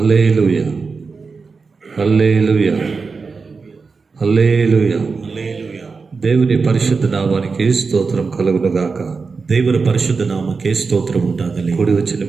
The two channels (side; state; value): left; quieter; 4.7 dB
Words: హల్లెలూయా, హల్లెలూయా. దేవుని పరిశుద్ధ నామానికి స్తోత్రం కలుగును గాక. దేవుని పరిశుద్ధ నామకే స్తోత్రం ఉండాలి. కూడి వచ్చిన